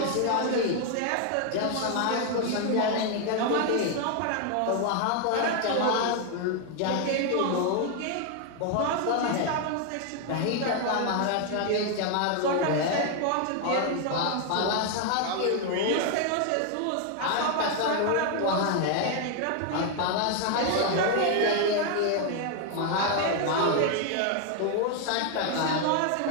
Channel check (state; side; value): different; both; correlation 0.00